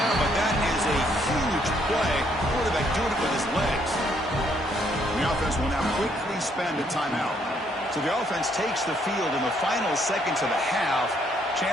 but that is a huge play. Quarterback doing it with his legs. The offense will now quickly spend a timeout. So the offense takes the field in the final seconds of the half.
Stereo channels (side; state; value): both; normal; correlation 0.70